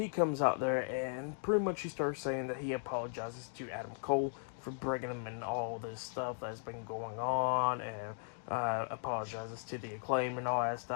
comes out there and pretty much he starts saying that he apologizes to Adam Cole for bringing him in all this stuff that's been going on, and apologizes to the Acclaim and all that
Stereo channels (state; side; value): silent; right; digital silence